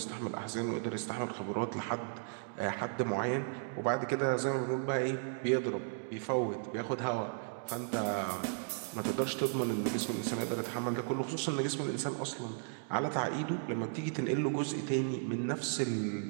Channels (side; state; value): left; silent; digital silence